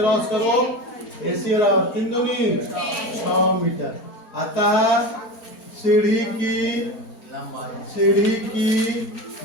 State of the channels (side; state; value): right; late; 4.4 ms